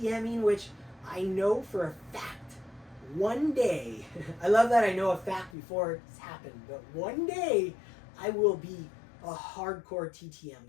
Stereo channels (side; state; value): right; drops out; at 5.6 s